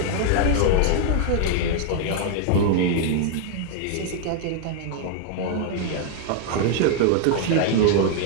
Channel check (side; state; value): both; different; correlation 0.00